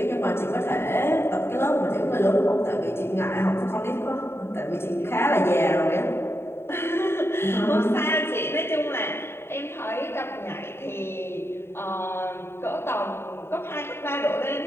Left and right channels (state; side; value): late; right; 0.12 ms